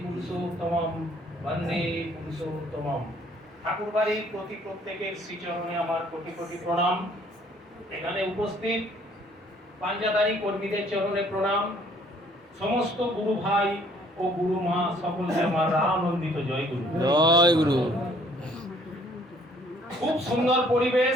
পুরুষোত্তমম বন্দে পুরুষোত্তমম। ঠাকুরবাড়ির প্রত্যেকের শ্রীচরণে আমার কোটি কোটি প্রণাম। এখানে উপস্থিত পাঞ্জাদারি কর্মীদের চরণে প্রণাম। সমস্ত গুরু ভাই ও গুরু মা সকলকে আমার আনন্দিত জয় গুরু। জয় গুরু। খুব সুন্দর পরিবেশ,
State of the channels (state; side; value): normal; both; correlation 0.60